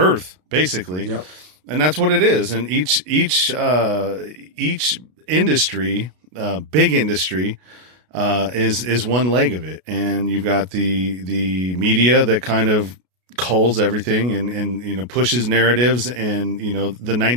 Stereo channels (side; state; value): left; late; 33 ms